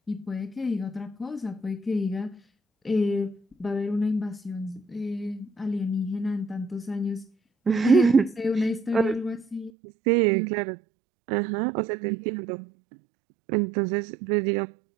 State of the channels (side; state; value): left; drops out; at 9.7 s